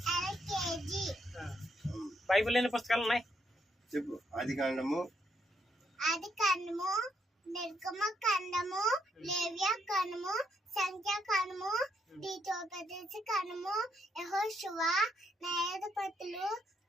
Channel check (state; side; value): normal; both; correlation 0.75